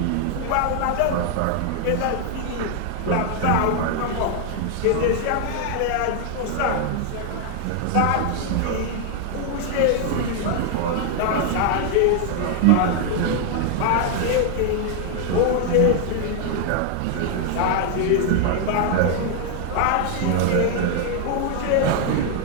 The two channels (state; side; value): different; both; correlation 0.00